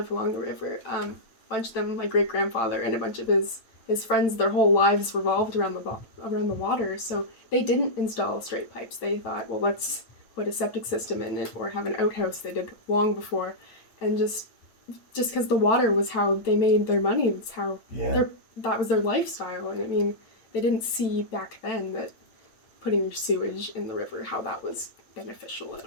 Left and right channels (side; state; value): right; late; 9.0 ms